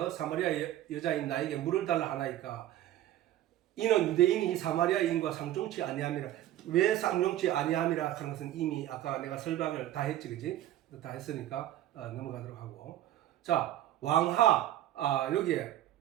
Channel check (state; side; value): quieter; left; 13.1 dB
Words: 사마리아 여자인 나에게 물을 달라 하나이까 이는 유대인이 사마리아인과 상종치 아니함이라. 왜 상종치 아니함이라 하는 것은 이미 아까 내가 설명을 다 했지 그지? 다 했으니까 넘어가도록 하고 자 왕하 여기에